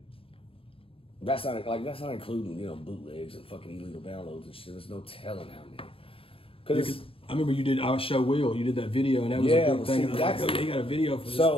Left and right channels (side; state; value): right; late; 0.27 ms